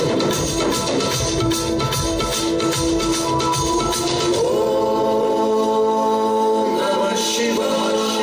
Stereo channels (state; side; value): identical; both; correlation 1.00